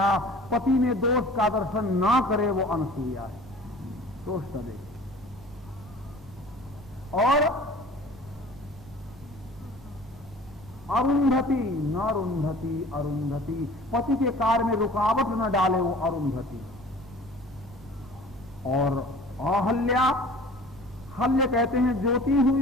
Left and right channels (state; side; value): normal; both; correlation 0.45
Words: पति में दोष का दर्शन ना करे वो अनसूया है, दोष न देखे। और अरुंधति, न रुंधति, अरुंधति, पति के कार्य में रुकावट न डाले वो अरुंधति। और अहल्या, हल्य कहते हैं ज्योति हुई